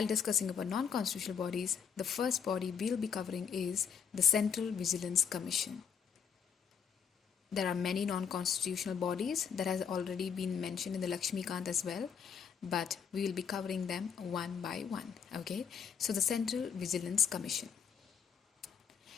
discussing about non-constitutional bodies, the first body we'll be covering is the Central Vigilance Commission. There are many non-constitutional bodies that has already been mentioned in the Lakshmikant as well, but we will be covering them one by one. Okay, so the Central Vigilance Commission.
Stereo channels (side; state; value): right; quieter; 7.2 dB